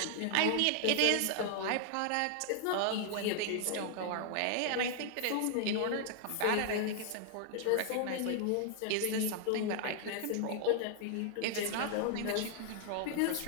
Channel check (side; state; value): both; different; correlation 0.00